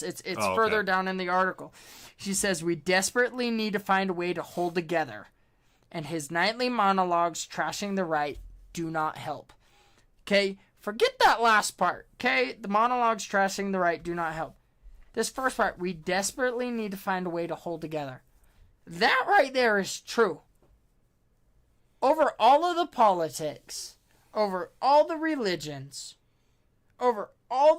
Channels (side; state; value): both; identical; correlation 1.00